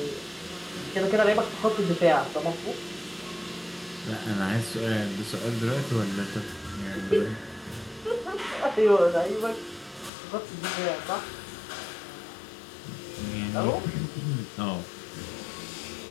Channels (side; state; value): right; drops out; at 10.1 s